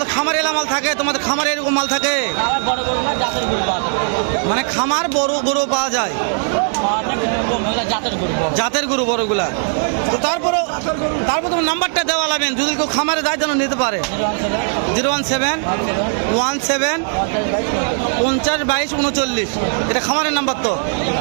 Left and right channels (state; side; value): silent; left; 61 dB below the other